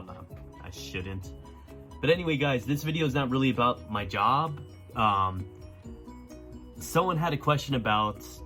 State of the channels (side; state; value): both; identical; correlation 1.00